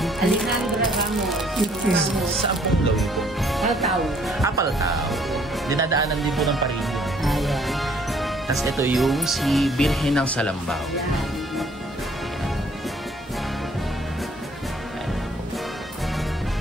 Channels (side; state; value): both; normal; correlation 0.61